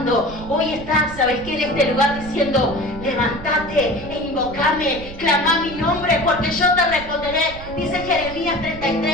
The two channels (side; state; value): right; noise; rumble, 14 dB below the sound